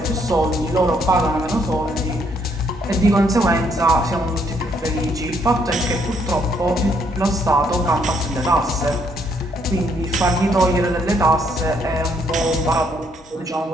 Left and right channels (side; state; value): both; normal; correlation 0.70